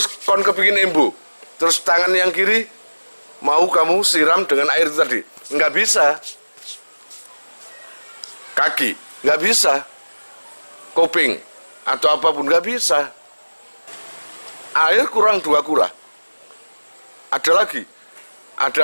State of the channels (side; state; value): both; inverted; correlation -1.00